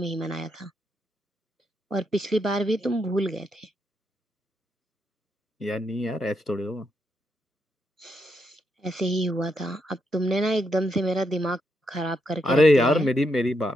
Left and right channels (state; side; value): normal; both; correlation 0.80